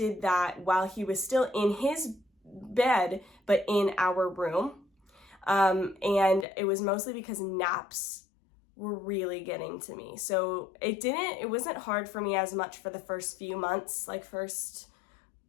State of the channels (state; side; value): drops out; right; at 6.5 s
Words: that while he was still in his bed, but in our room. And it was mostly because naps were really getting to me. So it wasn't hard for me as much for the first few months, like first